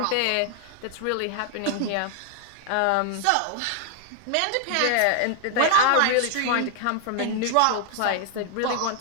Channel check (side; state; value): both; different; correlation 0.00